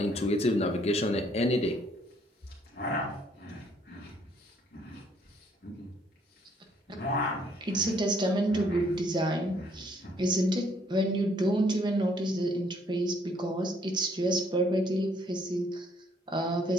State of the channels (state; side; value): normal; both; correlation 0.66